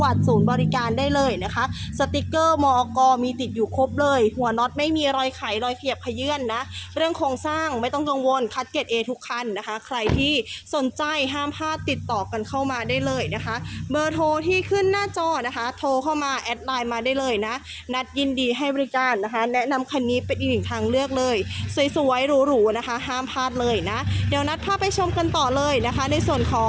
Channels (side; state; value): both; identical; correlation 1.00